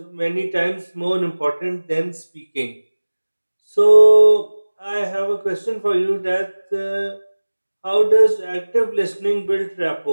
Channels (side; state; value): both; inverted; correlation -1.00